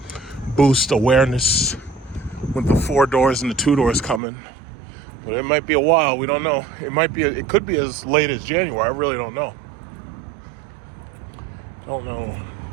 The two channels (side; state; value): left; drops out; at 4.2 s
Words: boost awareness with the 4 doors and the 2 doors coming. But it might be a while. We don't know. It could be as late as January. I really don't know. Don't know.